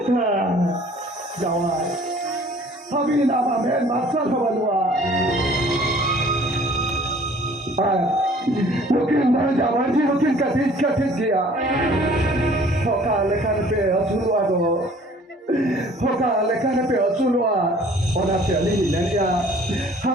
जवान अभी ना मैं मास्टर खबर हुआ लेकिन मैं जवान जी लेकिन कथित किया होका लेखन पे अचुलवा दो होका लेखन पे अचुलवा और आप चली नहीं क्या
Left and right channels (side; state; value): both; normal; correlation 0.53